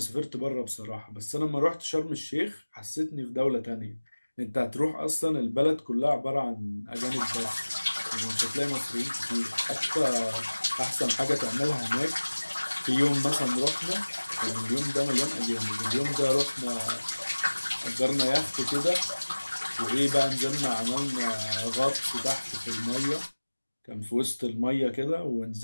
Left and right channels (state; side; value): inverted; both; correlation -1.00